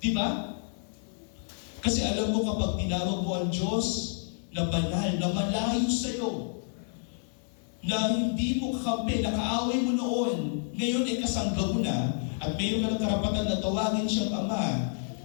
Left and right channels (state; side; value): silent; right; 58 dB below the other